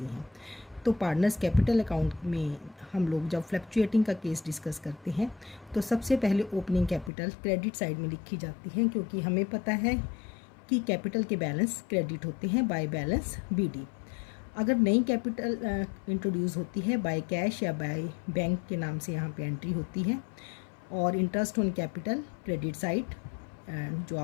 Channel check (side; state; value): right; drops out; at 7.1 s